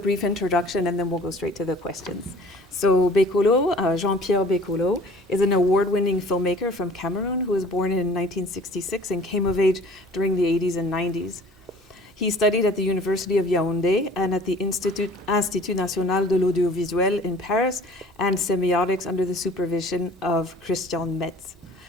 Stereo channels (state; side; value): normal; both; correlation 0.49